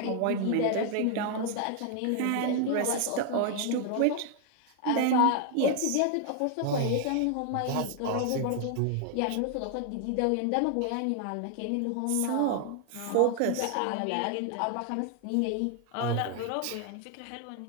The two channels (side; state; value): both; different; correlation 0.00